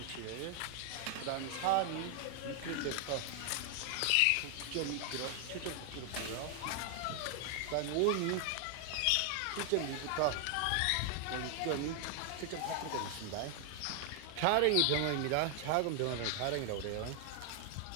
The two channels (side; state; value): both; different; correlation 0.00